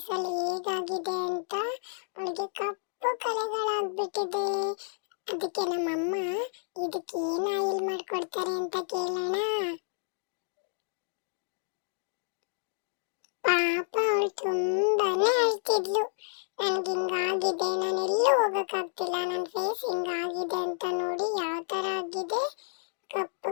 ಹೇಗಾಗಿದೆ ಅಂತ. ಅವಳಿಗೆ ಕಪ್ಪು ಕಲೆಗಳಾಗ್ಬಿಟ್ಟಿದೆ. ಅದಕ್ಕೆ ನಮ್ಮಮ್ಮ ಇದಕ್ಕೆ ಏನ್ ಆಯಿಲ್ ಮಾಡ್ಕೊಡ್ತಾರೆ ಅಂತ ಕೇಳೋಣ. ಪಾಪ ಅವಳು ತುಂಬಾನೇ ಅಳ್ತಿದ್ಲು. ನನ್ಗೆ ಹಿಂಗಾಗಿದೆ, ನಾನು ಎಲ್ಲೂ ಹೋಗಕ್ಕಾಗ್ತಿಲ್ಲ, ನನ್ನ ಫೇಸ್ ಹಿಂಗಾಗಿದೆ ಅಂತ. ನೋಡಿ ಯಾವ ತರ ಆಗಿದೆ ಕಪ್ಪು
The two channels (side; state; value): right; silent; digital silence